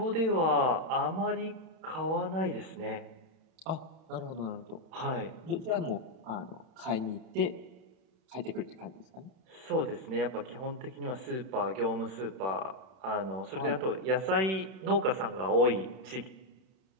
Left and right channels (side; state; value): left; late; 31 ms